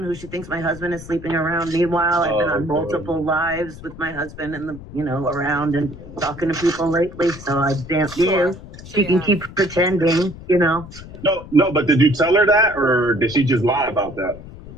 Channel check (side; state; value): left; noise; rumble, 15 dB below the sound